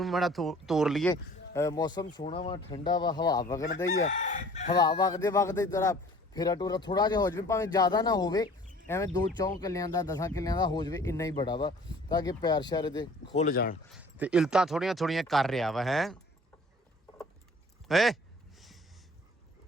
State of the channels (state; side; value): normal; both; correlation 0.50